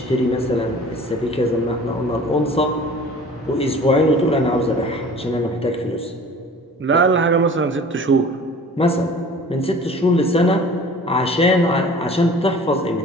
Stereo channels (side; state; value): both; normal; correlation 0.45